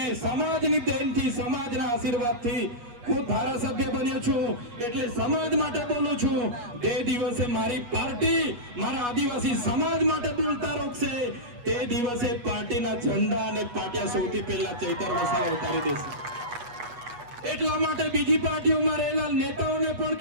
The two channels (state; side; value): late; left; 8.3 ms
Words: સમાજની દેનથી, સમાજના આશીર્વાદથી હું ધારાસભ્ય બન્યો છું. એટલે સમાજ માટે બોલું છું. તે દિવસે મારી પાર્ટી મારા આદિવાસી સમાજ માટે બોલતા રોકશે, તે દિવસે પાર્ટીના ઝંડા અને પાટિયા સૌથી પહેલા ચૈતર વસાવા ઉતારી દેશે. એટલા માટે બીજી પાર્ટીઓમાં રહેલા નેતાઓને પણ